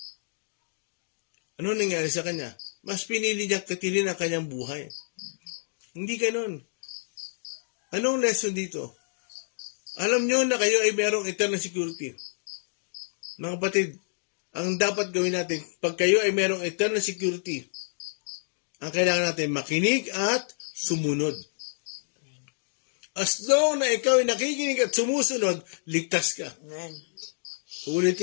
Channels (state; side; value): silent; right; digital silence